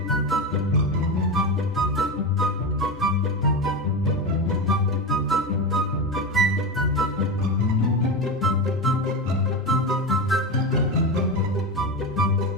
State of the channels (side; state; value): both; normal; correlation 0.19